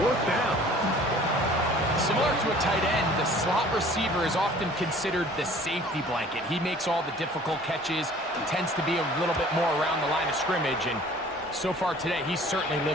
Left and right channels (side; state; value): both; normal; correlation 0.50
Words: down. Similar to a tight end, the slot receiver is often considered the safety blanket. He makes all the difficult catches, tends to be a little bit more around the line of scrimmage, and so far today, he's certainly